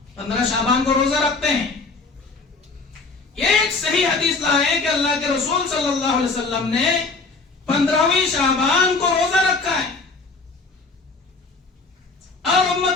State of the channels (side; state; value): right; quieter; 3.9 dB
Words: 15 شعبان کو روزہ رکھتے ہیں. یہ ایک صحیح حدیث لائے کہ اللہ کے رسول صلی اللہ علیہ وسلم نے 15ویں شعبان کو روزہ رکھا ہے اور